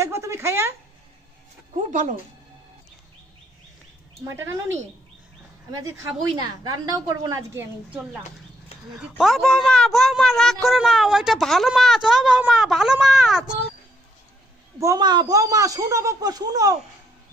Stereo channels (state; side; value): normal; both; correlation 0.72